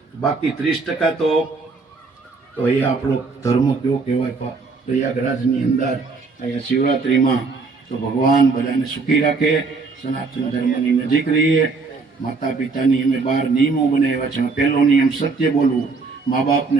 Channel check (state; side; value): quieter; left; 4.3 dB